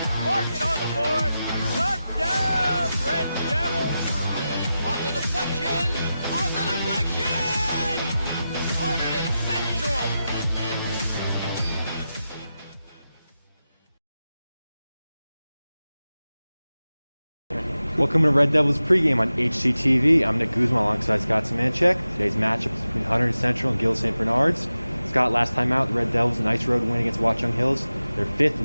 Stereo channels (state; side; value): inverted; both; correlation -0.93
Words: Mark it on the board. Touchdown, Red Devils. On the deflection. On the deflection. Hunterdon Central. Welcome to Red Devils pregame on HCTV. I'm Nick Guzman alongside Scott Szymanczyk. Today's matchup is between Hunterdon Central and Gill St. Bernard's. Scott, last time out, the Red Devils, a nice road win against Watchung Hills. Their 5th